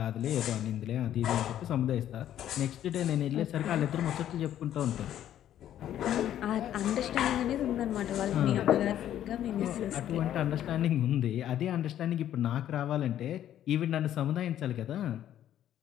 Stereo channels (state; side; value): quieter; right; 11.3 dB